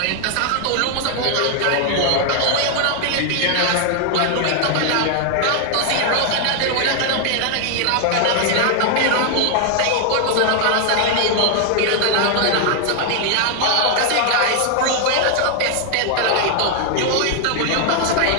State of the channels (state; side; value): different; both; correlation 0.00